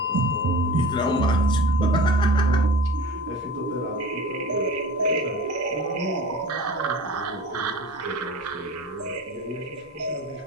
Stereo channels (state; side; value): normal; both; correlation 0.38